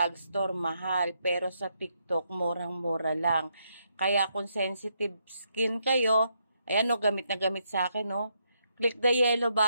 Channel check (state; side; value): inverted; both; correlation -0.78